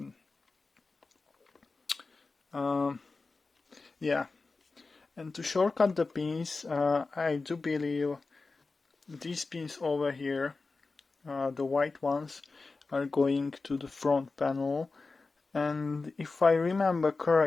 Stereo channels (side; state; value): right; quieter; 3.9 dB